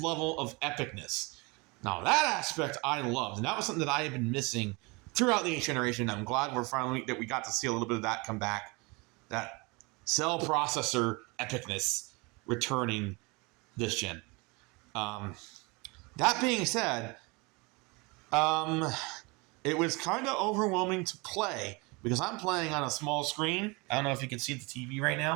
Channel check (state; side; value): quieter; left; 27.2 dB